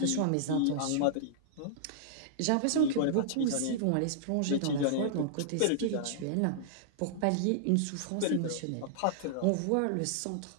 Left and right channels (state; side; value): different; both; correlation -0.01